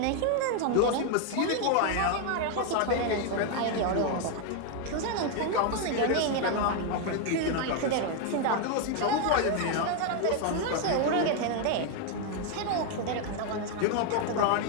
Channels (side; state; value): both; different; correlation 0.01